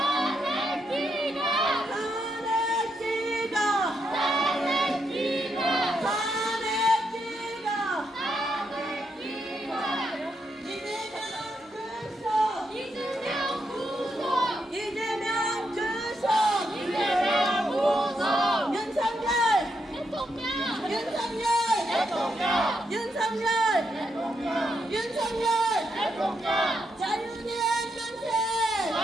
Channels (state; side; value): normal; both; correlation 0.81